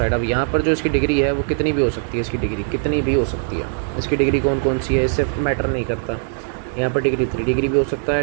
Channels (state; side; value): silent; left; 66 dB below the other